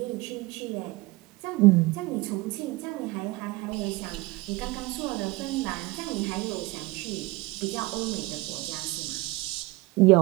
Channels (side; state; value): left; quieter; 21.9 dB